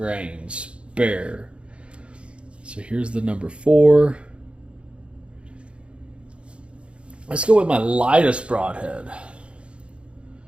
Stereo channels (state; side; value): late; left; 0.058 ms